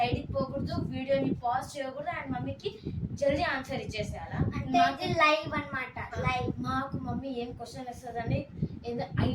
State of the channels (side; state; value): both; identical; correlation 1.00